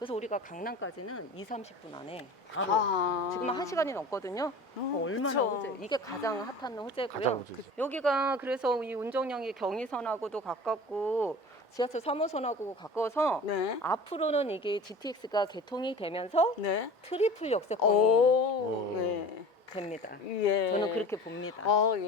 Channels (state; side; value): normal; both; correlation 0.38